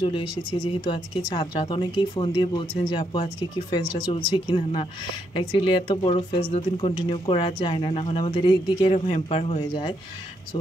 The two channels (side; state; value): both; normal; correlation 0.77